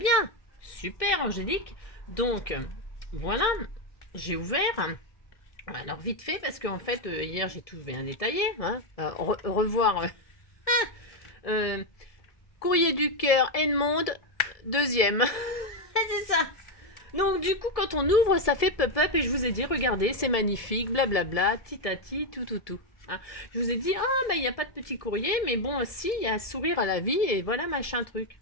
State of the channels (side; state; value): right; late; 1.7 ms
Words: super Angélique. Donc, voilà, j'ai ouvert. Alors vite fait, parce qu'en fait, hier j'ai tout bien détaillé, hein. Revoir euh, Courrier du cœur, Edmond, deuxième. C'est ça. Donc du coup, quand on ouvre, ça fait pop-up et je vous ai dit, regardez, c'est magnifique, blablabla, titati, tout, tout, tout. Hein. Je vous ai dit, ah, bah il n'y a pas de petit courrier, mais bon, si, il y a un sourire à la vie et voilà, machin truc.